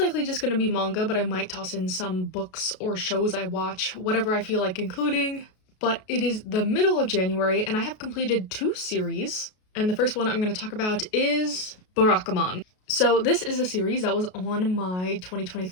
just going to be manga, but I might toss in some books or shows I watch, whatever I feel like including. But it is the middle of January, and I have completed 2 series, and the first one I'm going to talk about is Barakamon. So this is a series that was on my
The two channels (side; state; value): right; late; 33 ms